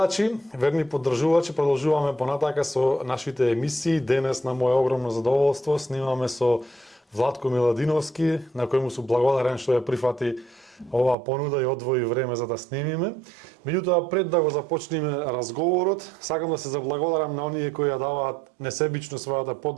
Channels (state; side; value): drops out; left; at 11.2 s